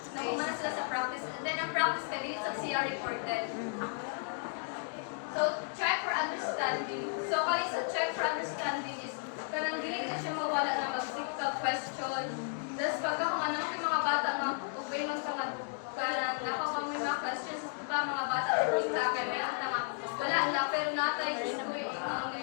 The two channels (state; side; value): silent; right; 55 dB below the other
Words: nakumana sila sa practice. And then ang practice ka dili sa CR reported. So check for understanding. So kali sa check for understanding is kanang dili ka siya mawala na mag-seek ka question. Tapos pagka kung ano yung mga bata nga, ubay man ka kanang nakakang may mga questions pa mga bata or kita kay may ang tanga. Wala na, pero natay gusto ko yung